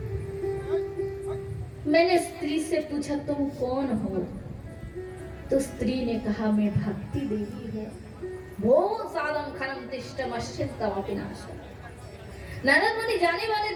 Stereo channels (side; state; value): both; identical; correlation 1.00